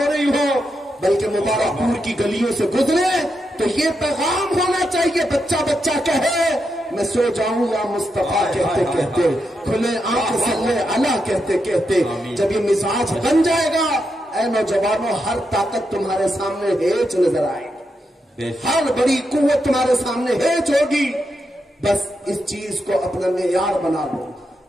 رہی ہو بلکہ مبارک پور کی گلیوں سے گزرے تو یہ پیغام ہونا چاہیے. بچہ بچہ کہے میں سو جاؤں یا مصطفیٰ کہتے کہتے کھلے آنکھ صلی اللہ کہتے کہتے. جب یہ مزاج بن جائے گا اے نوجوانوں ہر طاقت تمہارے سامنے ہیچ نظر آئے گی. ہر بڑی قوت تمہارے سامنے ہیچ ہوگی. بس اس چیز کو اپنا معیار بنا لو.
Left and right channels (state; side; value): normal; both; correlation 0.84